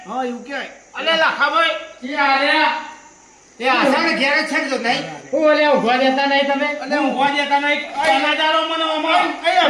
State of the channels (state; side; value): identical; both; correlation 1.00